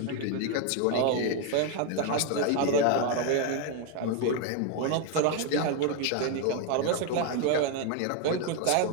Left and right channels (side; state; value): both; different; correlation 0.01